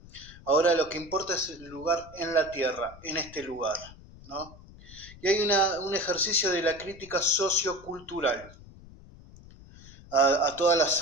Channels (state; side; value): noise; left; rumble, 20 dB below the sound